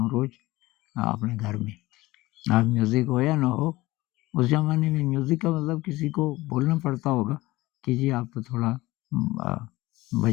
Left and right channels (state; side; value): quieter; right; 19.1 dB